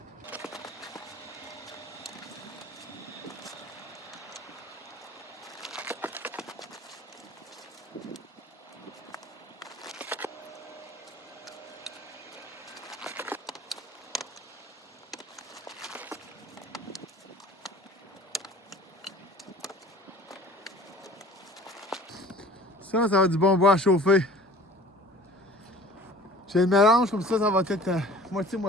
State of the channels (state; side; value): normal; both; correlation 0.46